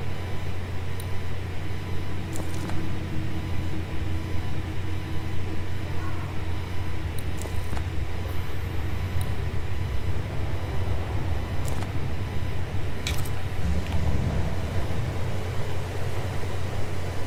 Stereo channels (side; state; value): both; identical; correlation 1.00